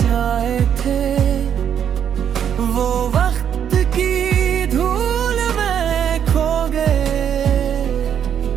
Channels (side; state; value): left; quieter; 8.8 dB